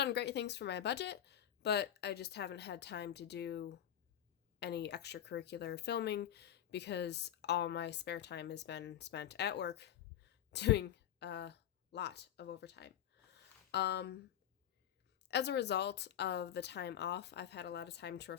great things for my budget, but I just haven't had time to do any extracurricular filming because all my spare time has been spent at work doing a lot of overtime. Um, as a result of the time off, I've had a lot of time to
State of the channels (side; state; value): right; quieter; 10.9 dB